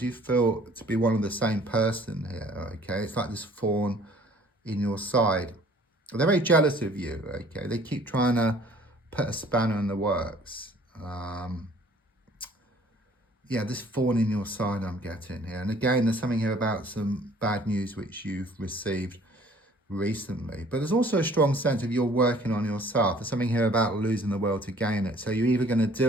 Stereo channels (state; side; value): normal; both; correlation 0.55